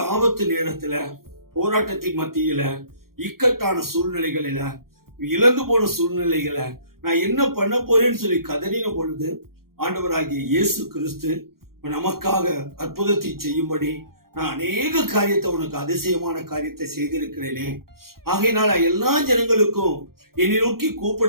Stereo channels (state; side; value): late; left; 0.93 ms